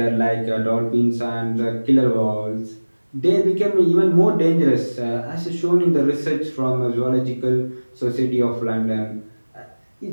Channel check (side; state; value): both; inverted; correlation -1.00